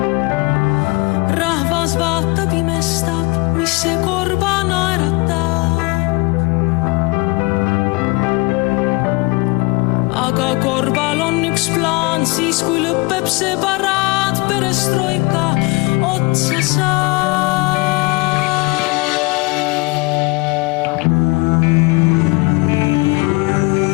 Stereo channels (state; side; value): quieter; right; 25.5 dB